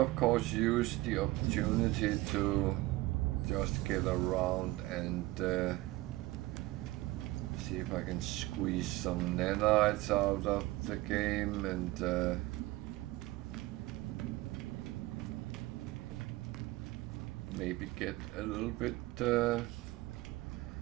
of course use the opportunity to just get around and see if I can squeeze some nanites out of the game and maybe get a little bit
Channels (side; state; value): left; quieter; 19.0 dB